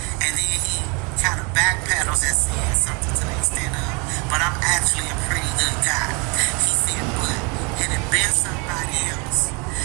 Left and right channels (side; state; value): left; quieter; 31.8 dB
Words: And then he kind of backpedals and said something to the extent of, "But I'm actually a pretty good guy." He said, "But had it been somebody else,